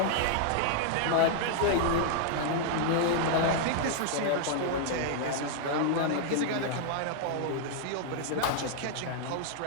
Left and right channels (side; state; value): both; different; correlation 0.00